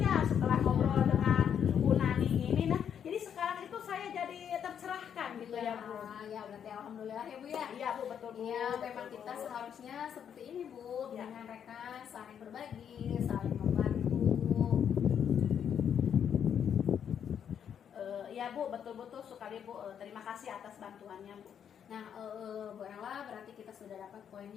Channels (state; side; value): quieter; right; 8.4 dB